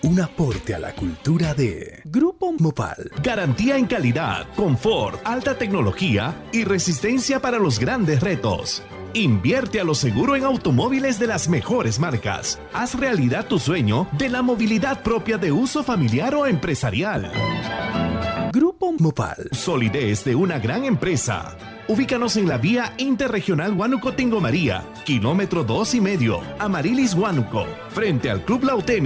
Un aporte a la cultura de Grupo Mopal. Garantía en calidad, confort, alta tecnología y resistencia para los grandes retos. Invierte a lo seguro en automóviles de las mejores marcas. Haz realidad tu sueño de la movilidad propia de uso familiar o empresarial. Grupo Mopal. Solidez de una gran empresa. Ubícanos en la vía interregional Huánuco-Tingo María, kilómetro 2,5, Amarilis Huánuco, frente al Club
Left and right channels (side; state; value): both; identical; correlation 1.00